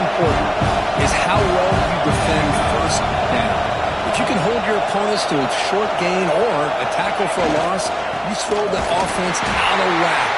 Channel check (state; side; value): identical; both; correlation 1.00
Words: is how well you defend first down. If you can hold your opponents to a short gain or a tackle for a loss, you throw the offense out of whack,